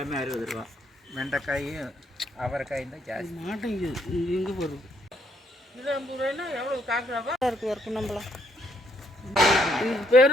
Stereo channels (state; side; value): normal; both; correlation 0.70